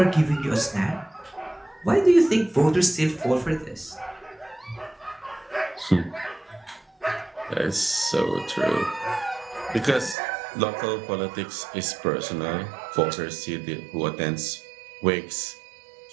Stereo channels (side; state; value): left; drops out; at 10.2 s